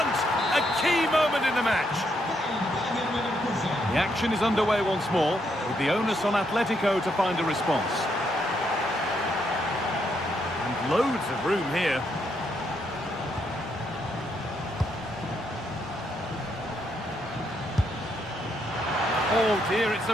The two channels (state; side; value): normal; both; correlation 0.76